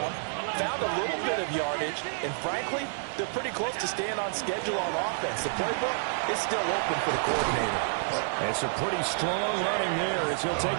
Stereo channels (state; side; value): silent; left; digital silence